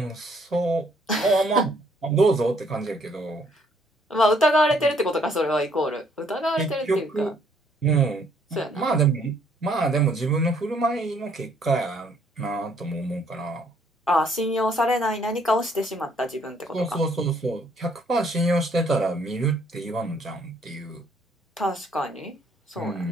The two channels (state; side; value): normal; both; correlation 0.65